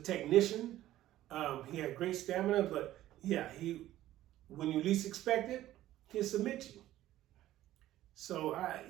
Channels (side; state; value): left; quieter; 14.2 dB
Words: He had great stamina, but when you least expect it, he'll submit you. So